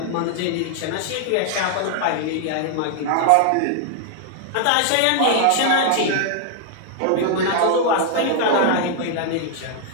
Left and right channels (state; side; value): different; both; correlation -0.01